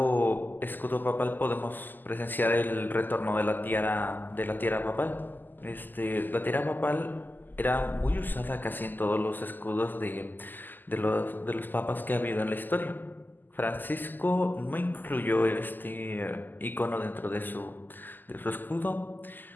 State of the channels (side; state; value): right; late; 0.088 ms